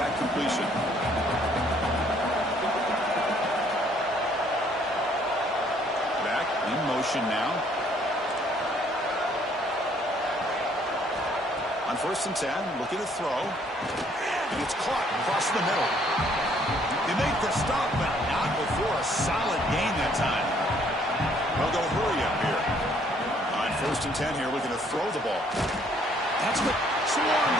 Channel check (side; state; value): both; normal; correlation 0.64